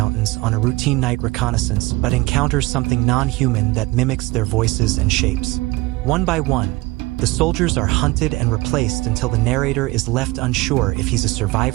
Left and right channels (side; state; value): left; quieter; 21.5 dB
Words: on a routine night reconnaissance, but encounters something non-human that mimics their voices and shapes. One by one, the soldiers are hunted and replaced until the narrator is left unsure if he's a